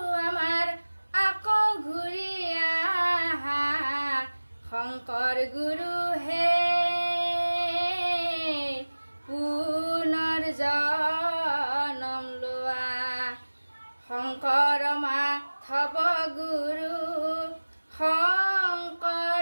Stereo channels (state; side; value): inverted; both; correlation -1.00